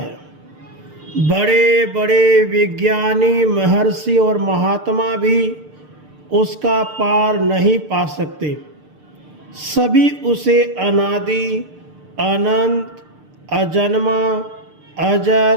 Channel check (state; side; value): late; left; 6.7 ms